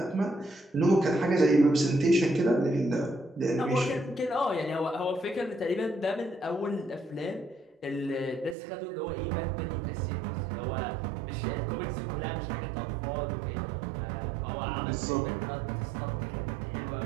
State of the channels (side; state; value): left; drops out; at 8.6 s